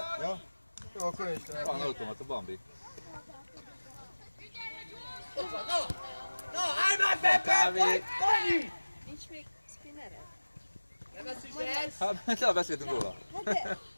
Ja? Jó, akkor én is Van automata, Bambi. No, állj már be! Kávé. Dani! Nincs még spinnered? Nem ezt is ez? Hát, le beszéltünk róla.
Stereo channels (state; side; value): inverted; both; correlation -1.00